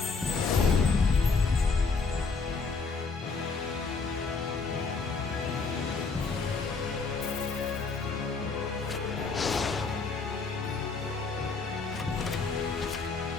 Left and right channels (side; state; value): right; quieter; 4.5 dB